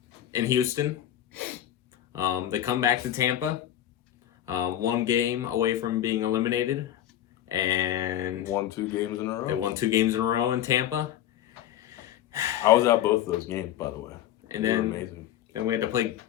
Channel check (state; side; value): quieter; right; 11.8 dB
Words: in Houston. They come back to Tampa. 1 game away from being eliminated, and won 2 games in a row. They won 2 games in a row in Tampa. I was at both of those games, by the way. And then we had to play